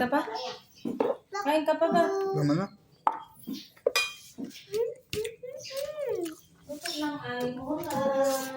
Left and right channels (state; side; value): identical; both; correlation 1.00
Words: pa? Kain ka pa ba? Naman na. Ito lang ay